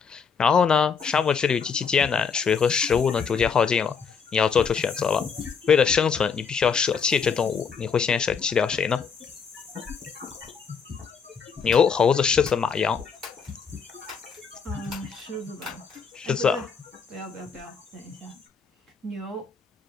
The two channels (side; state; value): right; quieter; 6.1 dB